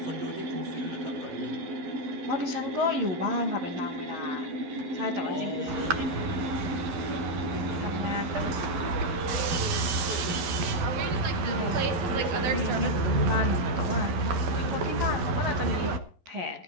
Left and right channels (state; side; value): late; left; 11 ms